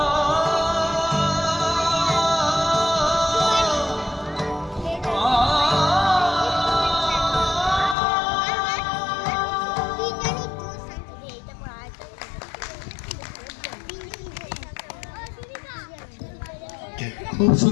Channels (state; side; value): drops out; right; at 8.0 s